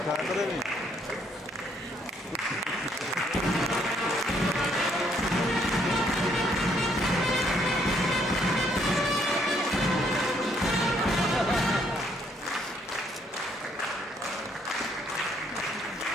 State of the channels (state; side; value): normal; both; correlation 0.69